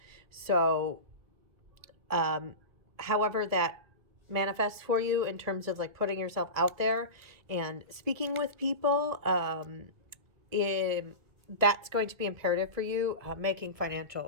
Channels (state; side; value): late; left; 1.7 ms